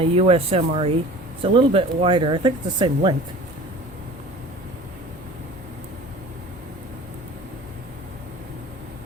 US MRE. It's a little bit wider. I think it's the same length.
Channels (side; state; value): both; normal; correlation 0.42